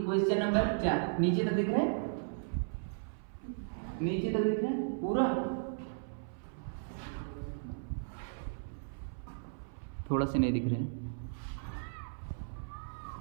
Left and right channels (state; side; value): silent; left; 54 dB below the other